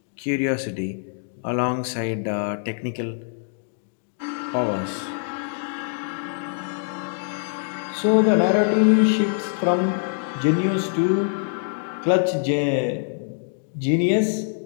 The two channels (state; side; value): silent; right; digital silence